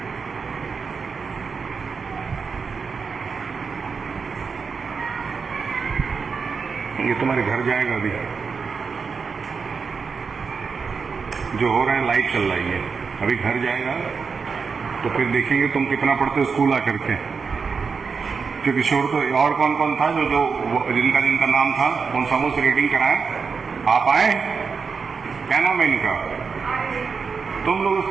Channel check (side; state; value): left; quieter; 5.4 dB